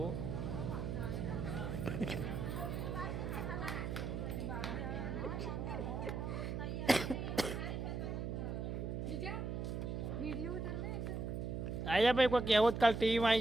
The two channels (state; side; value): noise; right; hum, 3 dB below the sound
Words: આયા ભાઈ કોઈ કહેવત કાલ ટીવીમાં